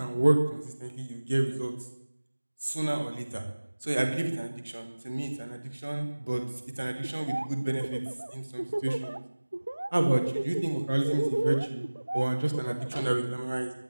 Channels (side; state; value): both; inverted; correlation -1.00